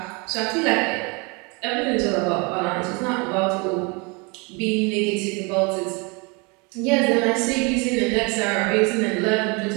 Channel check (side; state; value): left; quieter; 29.6 dB